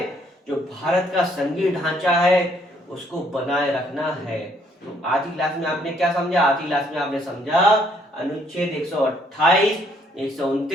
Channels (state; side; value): normal; both; correlation 0.67